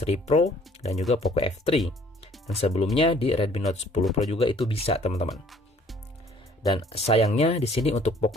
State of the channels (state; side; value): normal; both; correlation 0.57